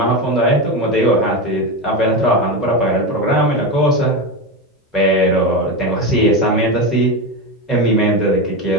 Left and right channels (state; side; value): normal; both; correlation 0.17